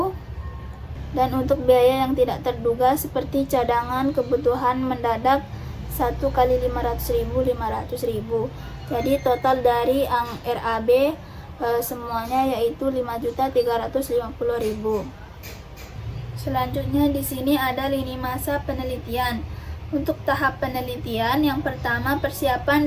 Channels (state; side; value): identical; both; correlation 1.00